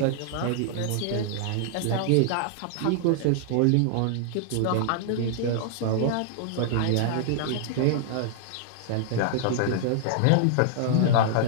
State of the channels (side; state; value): both; different; correlation -0.01